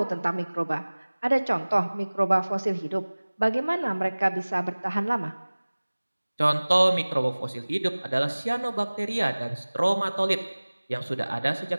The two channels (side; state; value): both; inverted; correlation -1.00